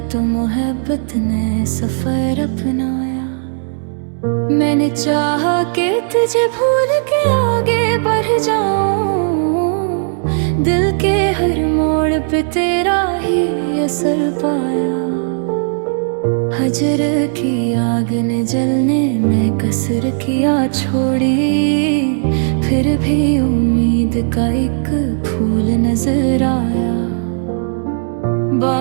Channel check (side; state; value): left; silent; digital silence